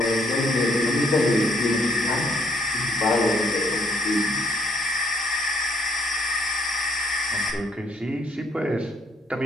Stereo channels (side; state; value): both; normal; correlation 0.68